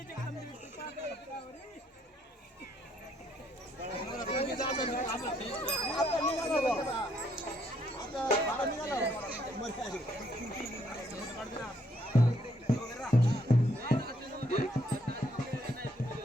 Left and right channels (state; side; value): normal; both; correlation 0.70